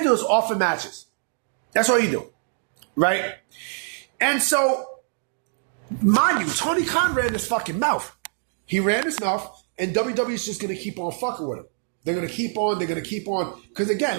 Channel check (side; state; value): left; silent; 60 dB below the other